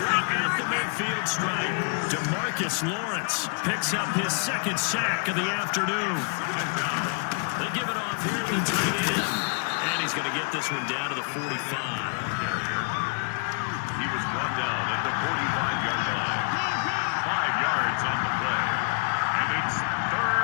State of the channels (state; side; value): quieter; right; 39.0 dB